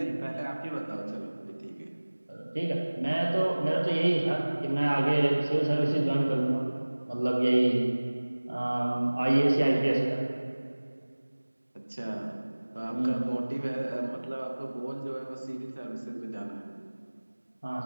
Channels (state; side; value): inverted; both; correlation -1.00